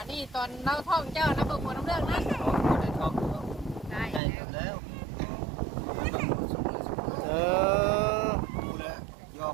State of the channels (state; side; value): drops out; left; at 4.2 s